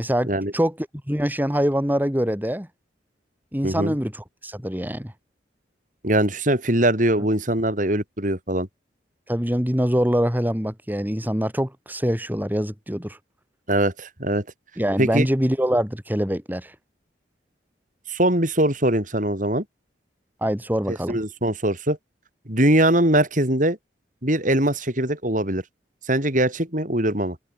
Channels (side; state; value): both; normal; correlation 0.57